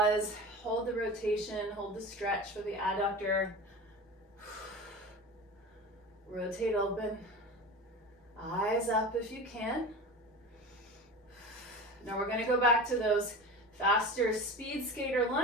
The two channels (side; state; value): both; normal; correlation 0.32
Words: hold the rotation, hold the stretch for the adductor. Rotate open, eyes up if you can. Now we're gonna go back to those faster speed skater